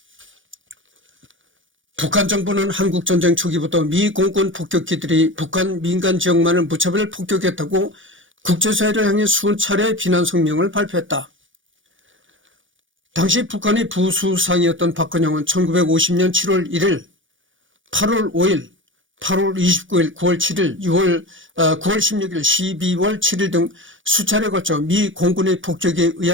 북한 정부는 한국전쟁 초기부터 미 공군 폭격기들이 북한 민간 지역만을 무차별 폭격했다고 국제사회를 향해 수차례 비난 성명을 발표했다. 당시 북한의 부수상이었던 박근영은 1950년 7월 1일, 8월 5일, 8월 29일, 9월 7일, 9월 16일, 12월 7일 등 수차례 걸쳐 미 공군의 폭격에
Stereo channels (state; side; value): late; left; 0.57 ms